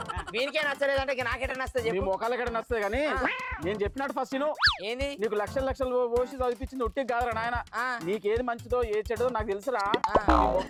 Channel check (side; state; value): both; identical; correlation 1.00